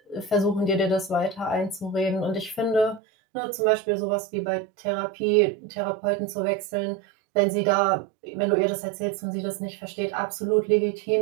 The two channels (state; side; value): drops out; left; at 3.0 s